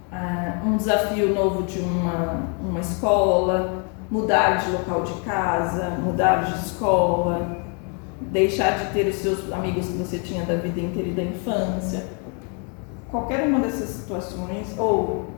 um desafio novo de uma escola, mudar de local de casa, mudar de escola, deixar de ter os seus amigos que você tinha da vida inteira e da infância. Qualquer uma dessas situações, ou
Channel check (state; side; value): quieter; right; 37.7 dB